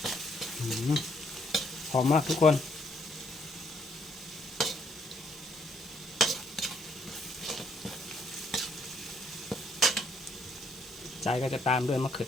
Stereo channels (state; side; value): normal; both; correlation 0.70